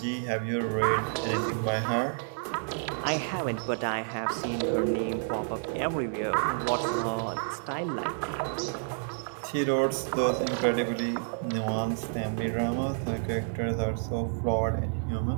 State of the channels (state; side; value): silent; left; digital silence